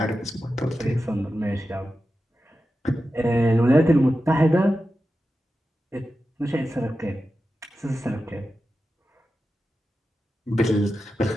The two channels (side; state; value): both; normal; correlation 0.92